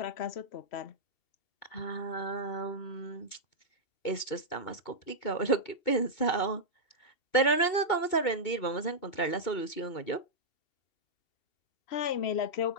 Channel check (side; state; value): right; late; 2.2 ms